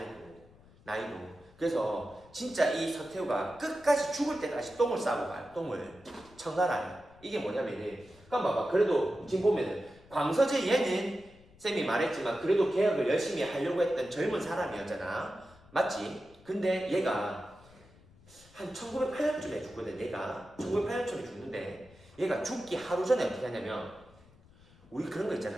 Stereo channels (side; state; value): left; noise; rumble, 25 dB below the sound